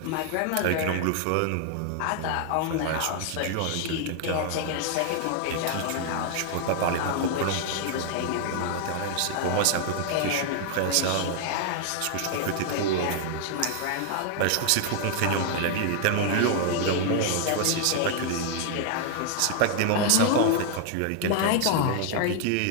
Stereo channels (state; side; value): different; both; correlation 0.00